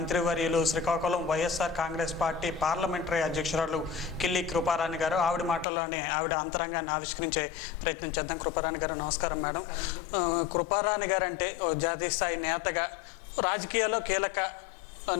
శ్రీకాకుళం వైఎస్ఆర్ కాంగ్రెస్ పార్టీ పార్లమెంటరీ అధ్యక్షురాలు కిల్లి కృపారాణి గారు. ఆవిడ మాటల్లోనే ఆవిడ అంతరంగాన్ని ఆవిష్కరించే ప్రయత్నం చేద్దాం. కృపారాణి గారు నమస్కారం మేడం. కృపారాణి గారు అంటే జాతీయ స్థాయి నేతగా, రాజకీయాల్లో కీలక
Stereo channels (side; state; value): right; drops out; at 5.7 s